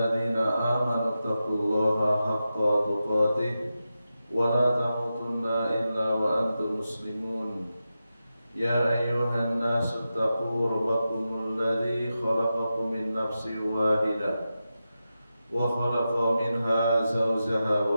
amanu taqullaha haqqa tuqatih wa la tamutunna illa wa antum muslimun. Ya ayyuhan nasu taqu rabbakumul ladzi khalaqakum min nafsin wahidah wa khalaqa minha zawjaha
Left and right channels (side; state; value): both; inverted; correlation -0.91